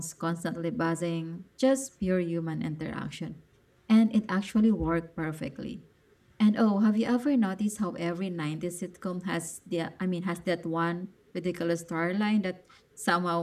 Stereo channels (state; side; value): identical; both; correlation 1.00